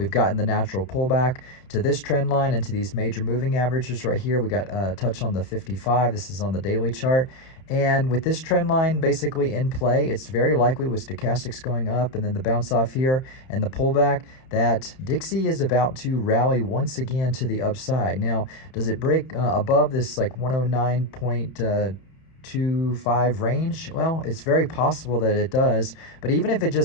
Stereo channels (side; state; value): right; late; 31 ms